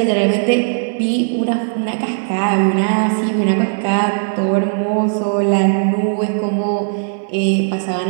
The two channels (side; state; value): left; silent; 61 dB below the other